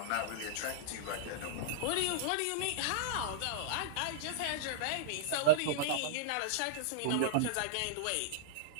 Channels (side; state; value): both; different; correlation -0.02